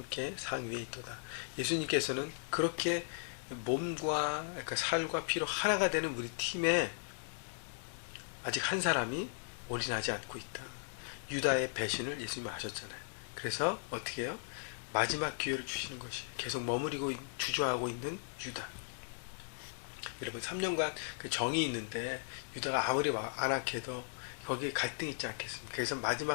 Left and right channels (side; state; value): right; silent; digital silence